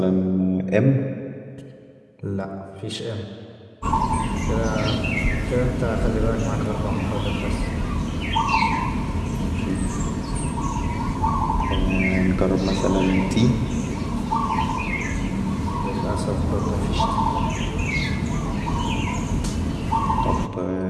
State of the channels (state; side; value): identical; both; correlation 1.00